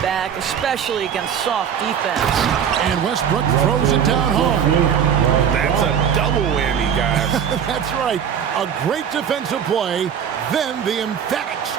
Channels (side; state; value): left; quieter; 8.1 dB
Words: back, especially against soft defense. And Westbrook throws it down hard. That's a double whammy, guys. That's right. A great defensive play, then the emphatic